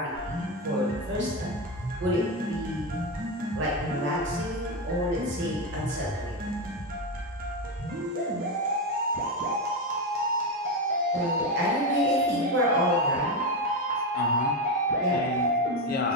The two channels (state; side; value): normal; both; correlation 0.11